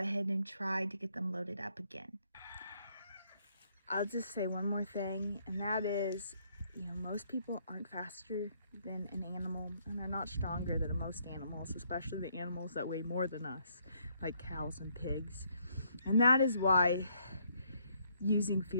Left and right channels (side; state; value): both; inverted; correlation -0.70